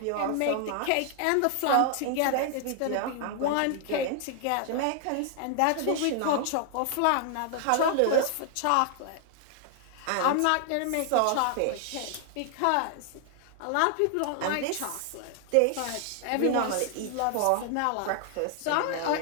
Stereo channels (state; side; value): different; both; correlation 0.00